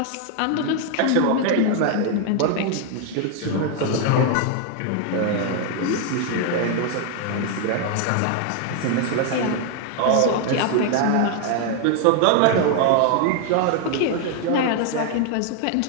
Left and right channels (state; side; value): different; both; correlation 0.01